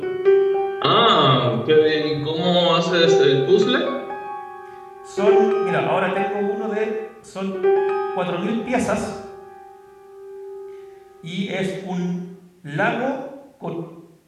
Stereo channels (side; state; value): both; identical; correlation 1.00